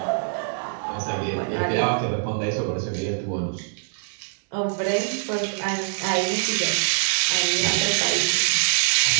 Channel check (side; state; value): left; silent; 60 dB below the other